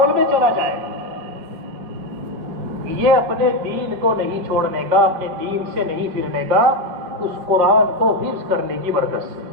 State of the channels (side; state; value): left; late; 5.6 ms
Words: میں چلا جائے، یہ اپنے دین کو نہیں چھوڑنے کا، اپنے دین سے نہیں پھرنے کا، اس قرآن کو حفظ کرنے کی برکت سے،